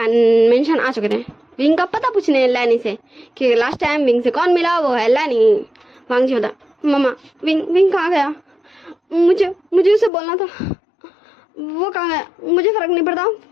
मेंशन आ चुके थे विंग का पता पूछने लैनी से कि लास्ट टाइम विंग से कौन मिला, वो है लैनी। वांग जी बता मम्मा विंग कहाँ गया? मुझे उसे बोलना था। वो कहाँ गया? मुझे फर्क नहीं पड़ता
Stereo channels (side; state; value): right; drops out; at 10.1 s